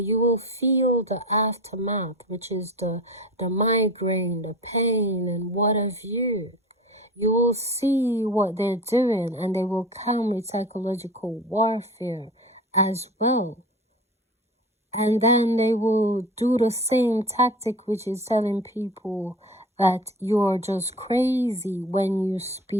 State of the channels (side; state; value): both; normal; correlation 0.35